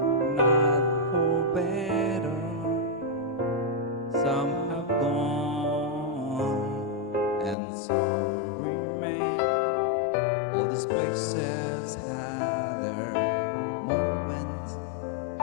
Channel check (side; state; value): right; drops out; at 7.6 s